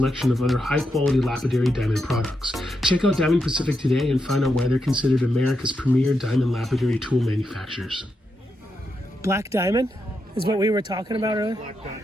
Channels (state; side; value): normal; both; correlation 0.84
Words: of other high-quality lapidary diamond products. Check out Diamond Pacific today and find out why they're considered America's premier diamond lapidary tool manufacturers. Black diamond is what we were talking about earlier? Black